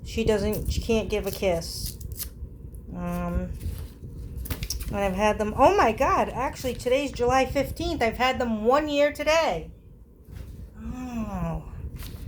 She can't give a kiss. And I've had them, oh my God, actually today's July 15th. I've had them 1 year today. Oh,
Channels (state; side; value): identical; both; correlation 1.00